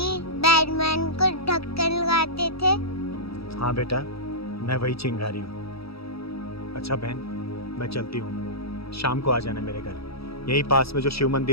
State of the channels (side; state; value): right; late; 0.77 ms